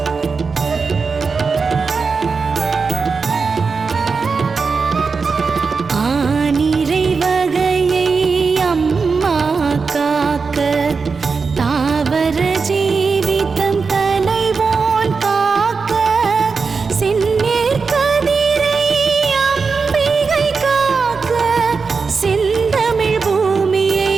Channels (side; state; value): left; quieter; 4.9 dB